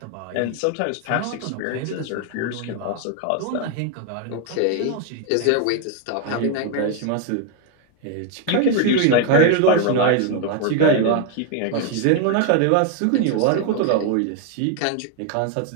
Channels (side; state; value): both; different; correlation 0.01